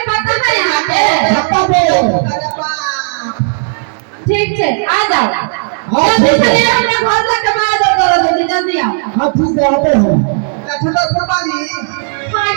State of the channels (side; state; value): left; silent; digital silence